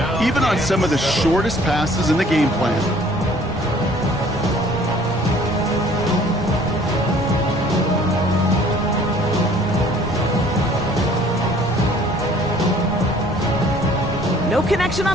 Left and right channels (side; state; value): right; noise; rumble, 13 dB below the sound